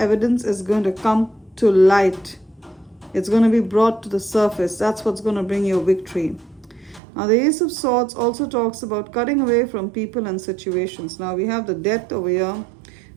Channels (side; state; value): left; drops out; at 7.0 s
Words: is going to come to light. It's going to be brought to the surface. That's what's going to bring you victory. Now, the Ace of Swords also talks about cutting away from people and situations. Now, we have the Death over here.